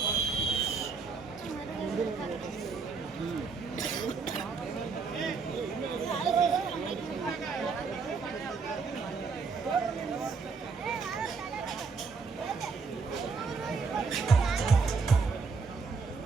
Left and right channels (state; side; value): quieter; left; 4.9 dB